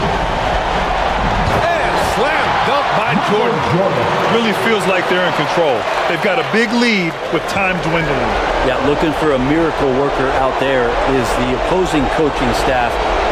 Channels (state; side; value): identical; both; correlation 1.00